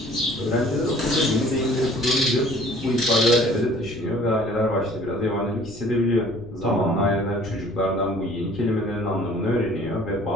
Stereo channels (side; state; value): left; noise; rumble, 18 dB below the sound